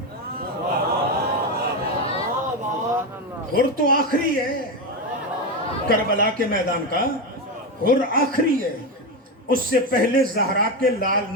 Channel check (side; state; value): both; normal; correlation 0.13